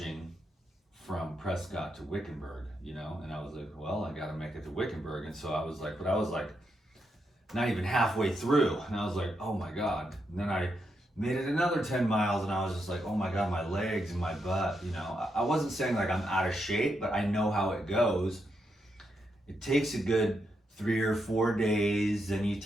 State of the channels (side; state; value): both; normal; correlation 0.82